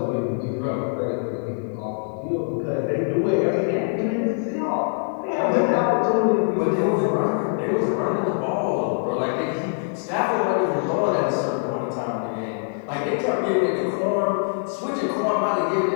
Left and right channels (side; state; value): right; silent; digital silence